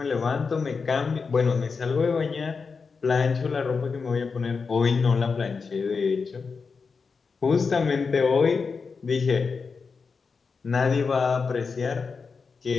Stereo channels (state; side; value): quieter; right; 5.0 dB